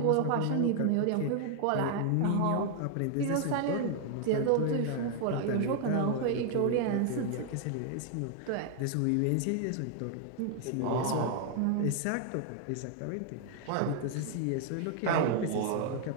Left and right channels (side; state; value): both; different; correlation 0.00